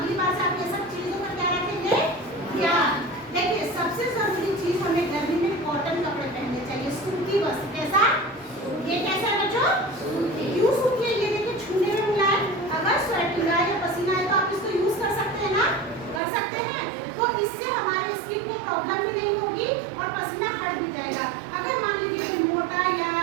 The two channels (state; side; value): drops out; left; at 16.2 s